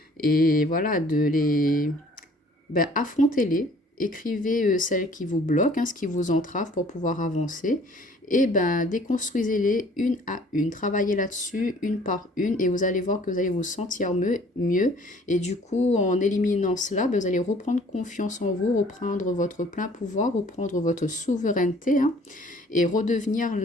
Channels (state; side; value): normal; both; correlation 0.54